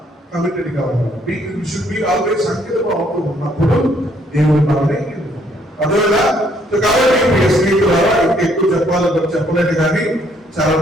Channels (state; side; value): normal; both; correlation 0.67